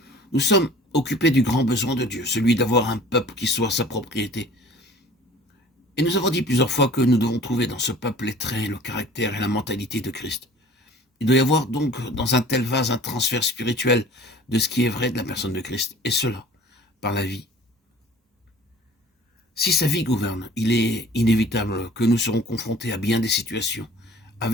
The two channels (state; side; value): normal; both; correlation 0.47